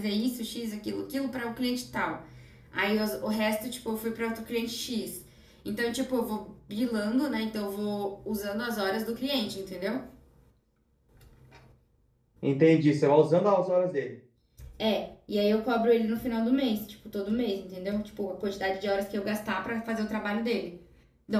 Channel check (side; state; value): both; identical; correlation 1.00